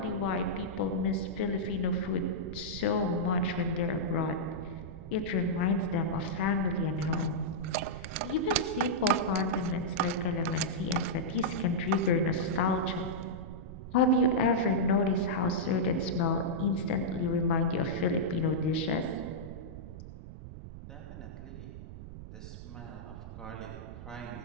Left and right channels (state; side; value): noise; right; rumble, 12 dB below the sound